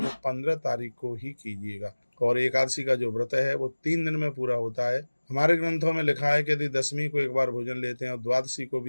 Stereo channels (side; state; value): both; inverted; correlation -1.00